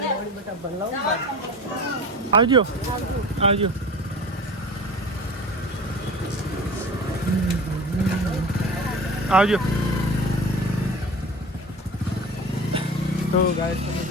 આવજો આવજો આવજો તો ગાઈસ તમે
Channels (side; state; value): both; normal; correlation 0.36